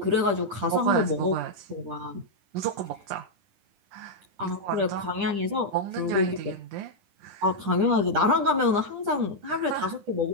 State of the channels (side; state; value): left; late; 10 ms